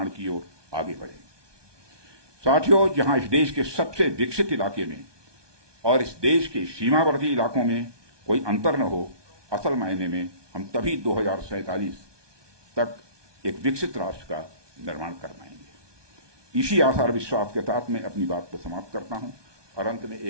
की ओर आगे बढ़ें। साथियों, जहां इस देश के सबसे विकसित इलाके में और इस देश के सीमावर्ती इलाकों में कोई अंतर न हो, असल मायने में हम तभी 2047 तक एक विकसित राष्ट्र का निर्माण कर पाएंगे। इसी आशा और विश्वास के साथ मैं अपनी बात को समाप्त करता हूं और अंत में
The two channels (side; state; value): left; late; 1.2 ms